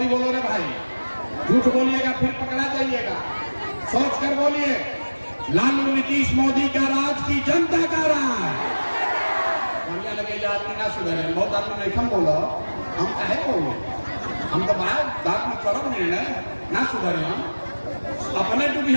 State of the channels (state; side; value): inverted; both; correlation -1.00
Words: बोलो रे भाई। झूठ बोलिएगा फिर पकड़ा जाइएगा। सोच कर बोलिए, लालू नीतीश मोदी का राज की जनता का राज। बढ़िया लगे आदमी ना सुधरे, बहुत आदमी नहीं हम बोलो, हम काहे बोलो, हम तो बात में करब निर्णय ना सुधरे, हम अपने डूबी